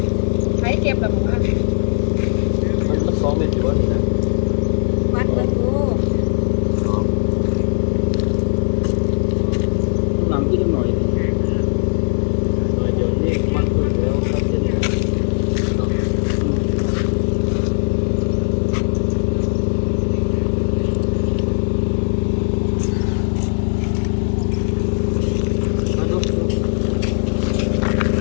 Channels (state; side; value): silent; right; 57 dB below the other